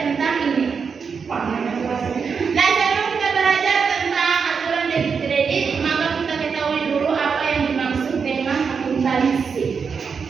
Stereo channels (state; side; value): quieter; left; 5.8 dB